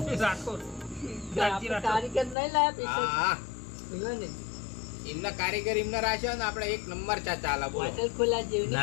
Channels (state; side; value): drops out; right; at 2.4 s